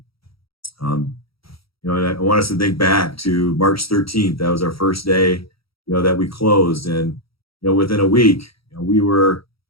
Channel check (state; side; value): late; right; 0.75 ms